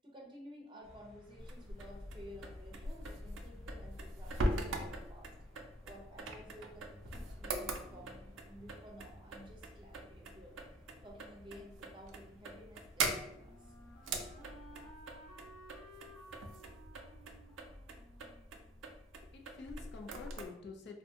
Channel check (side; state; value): both; normal; correlation 0.52